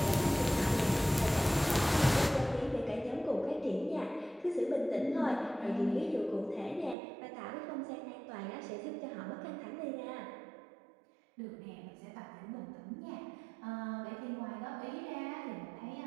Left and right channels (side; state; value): left; drops out; at 7.0 s